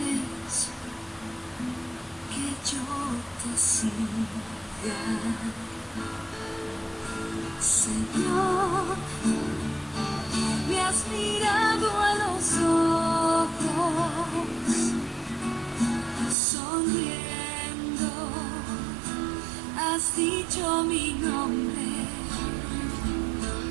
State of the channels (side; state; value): left; drops out; at 16.4 s